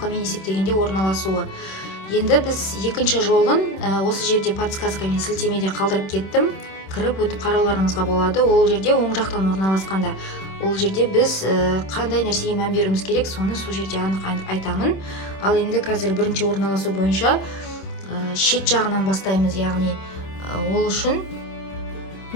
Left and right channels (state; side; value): late; right; 26 ms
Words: есептегенде орналасуы. Енді біз екінші жолын осы жерде подсказкамен сілтемеде қалдырып кеттім. Кіріп өтіп қарауларыңызға болады. Ол жерде оң жақтан орналасқанда. Ол жерде біз қандай нәрсеге мән беруіміз керек, соны сол жерде анық айтамын. Ал енді қазір бірінші орналасу бойынша шет жағынан бастаймыз. Яғни ол үшін